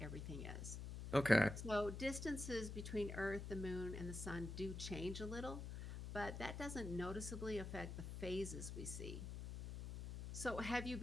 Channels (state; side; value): noise; left; hum, 6 dB below the sound